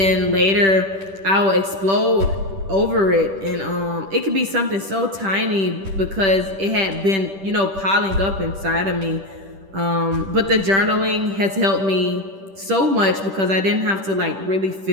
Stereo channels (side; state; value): left; late; 10 ms